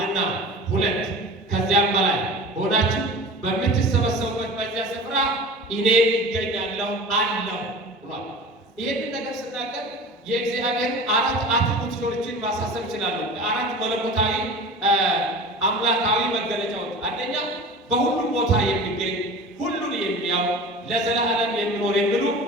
ሁለት ከዚያም በላይ ሆናችሁ በምትሰበሰቡበት በዚያ ስፍራ እኔ ይገኛለሁ አለው ብሏል። ይህንን ነገር ስናገር የእግዚአብሔር አራት አትሪቡቶችን ማሳሰብ ይችላሉ። አራት መለኮታዊ አምላካዊ መገለጫዎች። አንደኛ በሁሉም ቦታ የሚገኝ ሁሉን የሚያው ለዘላለም የሚኖር የሚሉ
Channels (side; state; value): both; normal; correlation 0.36